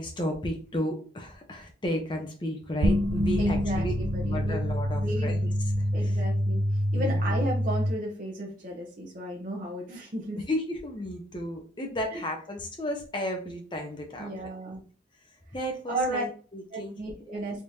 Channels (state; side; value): normal; both; correlation 0.73